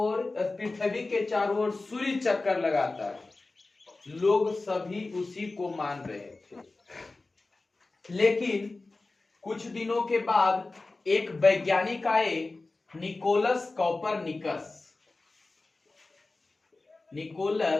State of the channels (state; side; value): quieter; right; 3.4 dB